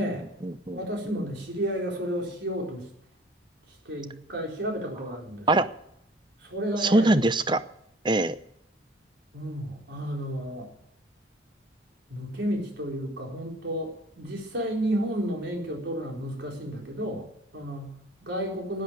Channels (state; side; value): normal; both; correlation 0.51